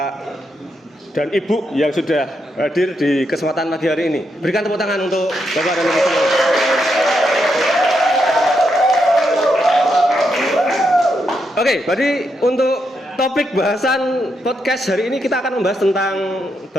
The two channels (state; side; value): normal; both; correlation 0.81